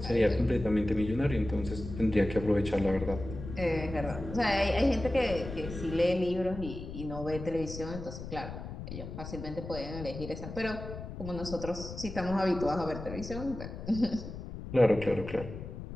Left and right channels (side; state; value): left; noise; rumble, 9 dB below the sound